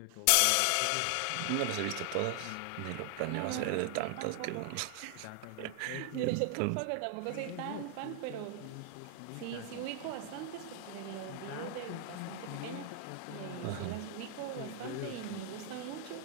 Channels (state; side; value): different; both; correlation 0.00